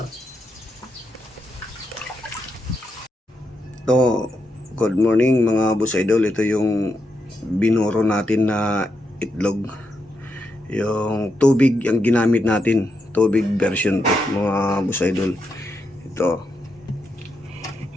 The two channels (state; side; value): normal; both; correlation 0.83